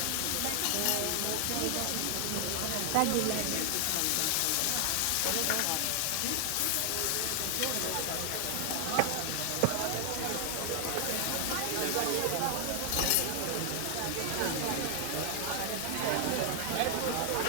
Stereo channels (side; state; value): both; different; correlation 0.00